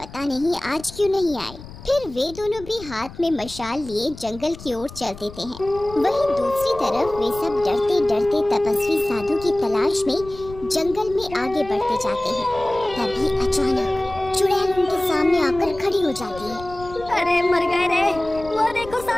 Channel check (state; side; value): noise; left; rumble, 16 dB below the sound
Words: नहीं आज क्यों नहीं आए। फिर वे दोनों भी हाथ में मशाल लिए जंगल की ओर चल देते हैं। वहीं दूसरी तरफ वे सब डरते डरते तपस्वी साधु की तलाश में जंगल में आगे बढ़ते जाते हैं। तभी अचानक चुड़ैल उनके सामने आकर खड़ी हो जाती है। अरे मर गए रे, वो देखो